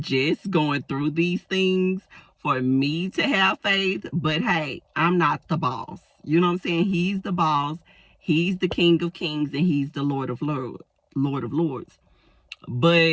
going through these things for me to have faith, but hey, I'm not the boss. You know what I'm saying? He's the boss. He's the King of Kings, and he's the Lord of Lords.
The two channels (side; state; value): both; identical; correlation 1.00